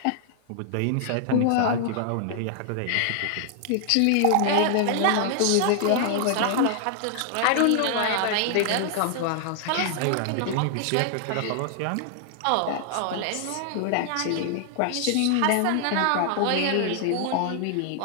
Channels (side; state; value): both; different; correlation 0.00